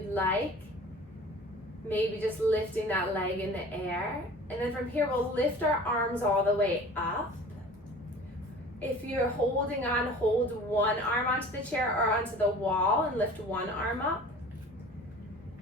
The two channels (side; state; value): both; normal; correlation 0.43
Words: like. Maybe just lifting that leg in the air. And then from here, we'll lift our arms all the way up. If you're holding on, hold one arm onto the chair or onto the wall and lift one arm up.